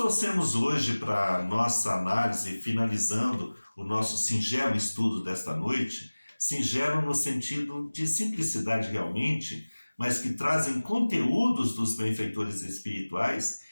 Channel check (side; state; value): both; inverted; correlation -1.00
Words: hoje para a nossa análise, finalizando o nosso singelo estudo desta noite, singelo no sentido de simplicidade realmente, mas que trazem conteúdos dos benfeitores espirituais,